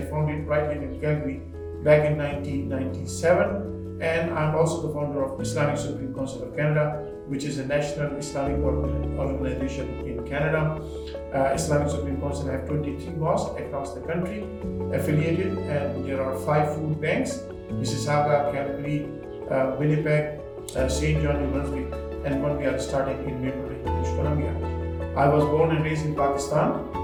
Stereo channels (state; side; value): identical; both; correlation 1.00